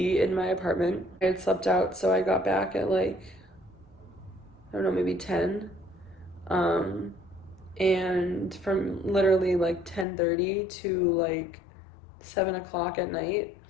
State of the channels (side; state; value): right; drops out; at 10.1 s